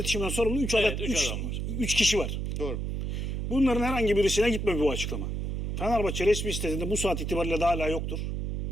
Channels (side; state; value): right; noise; hum, 2 dB below the sound